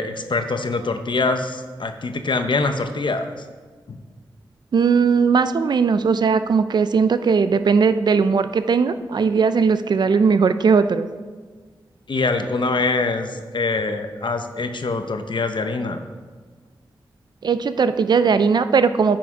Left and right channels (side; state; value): left; quieter; 3.3 dB